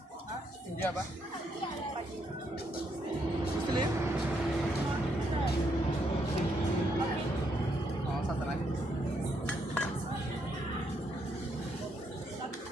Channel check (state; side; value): normal; both; correlation 0.76